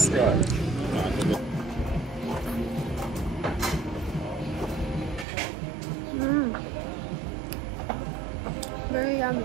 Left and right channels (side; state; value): left; drops out; at 5.2 s